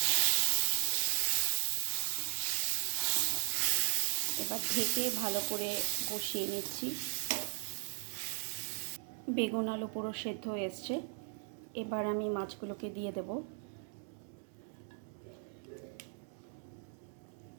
এবার ঢেকে ভালো করে কষিয়ে নিচ্ছি। বেগুন আলু পুরো সেদ্ধ হয়ে এসছে, এবার আমি মাছগুলোকে দিয়ে দেব।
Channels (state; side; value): silent; left; 53 dB below the other